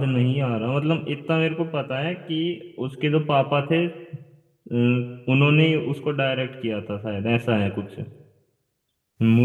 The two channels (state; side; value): identical; both; correlation 1.00